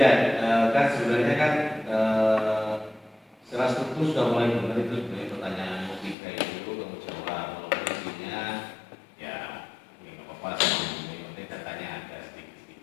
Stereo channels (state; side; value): drops out; right; at 6.2 s